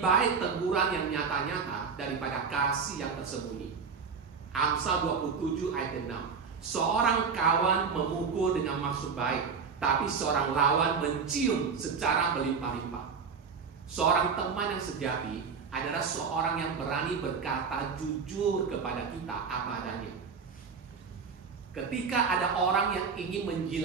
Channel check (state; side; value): quieter; left; 5.7 dB